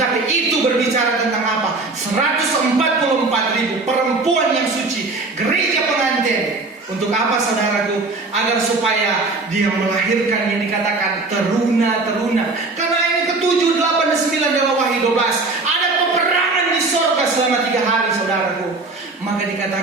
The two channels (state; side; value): quieter; left; 3.4 dB